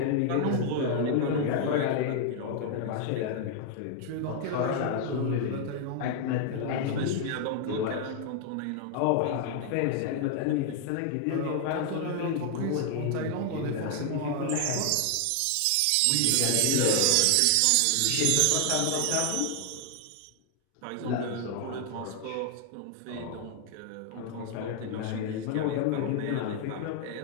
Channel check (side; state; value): both; different; correlation 0.00